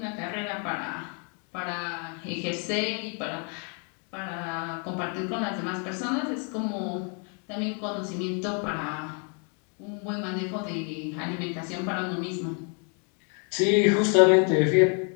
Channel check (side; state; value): right; quieter; 39.2 dB